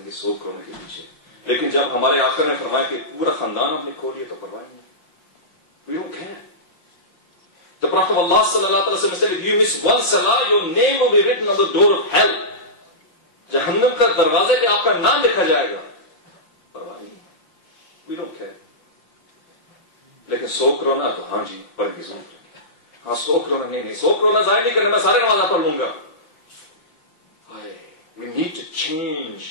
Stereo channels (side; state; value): right; late; 5.7 ms